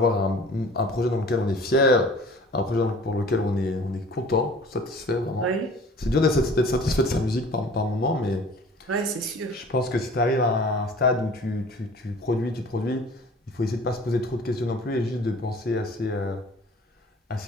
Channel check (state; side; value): normal; both; correlation 0.47